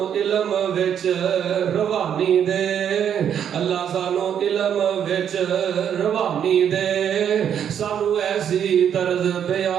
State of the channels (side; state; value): left; quieter; 8.8 dB